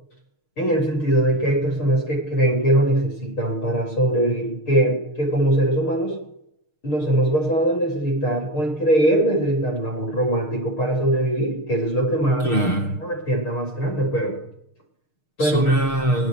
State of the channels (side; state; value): right; late; 6.5 ms